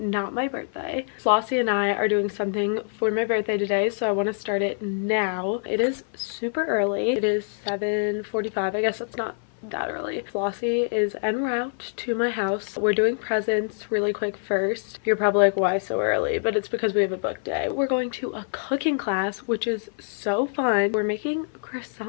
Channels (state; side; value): silent; right; 55 dB below the other